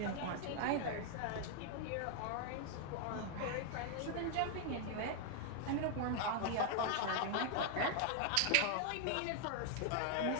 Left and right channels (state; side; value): different; both; correlation 0.00